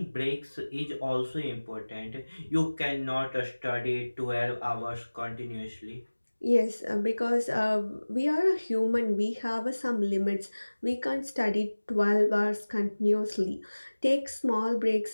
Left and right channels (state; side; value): inverted; both; correlation -1.00